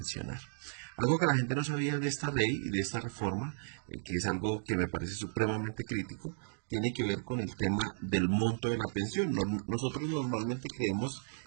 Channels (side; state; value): left; silent; digital silence